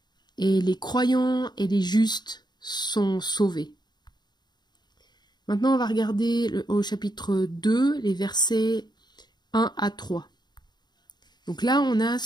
et les croyants et les justes sont sauvés. Maintenant, on va regarder au chapitre 2, les versets 1 à 3. Donc là, on a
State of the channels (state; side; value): late; right; 0.21 ms